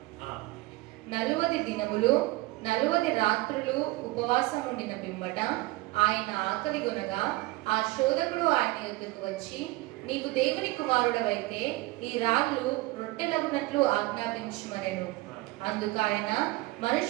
40 దినములు 40 రాత్రులు ఉపవాసం ఉండిన పిమ్మట ఆయన ఆకలి కొనగా ఆ శోధకుడు ఆయన యొద్దకు వచ్చి, నీకు దేవుని కుమారుడవైతే ఈ రాళ్ళు రొట్టెలగునట్లు ఆజ్ఞాపించుమనెను. అందుకు ఆయన,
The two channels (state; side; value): quieter; left; 20.6 dB